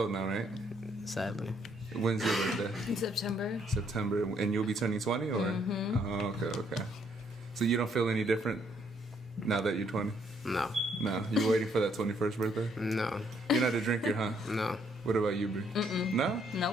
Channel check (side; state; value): both; normal; correlation 0.69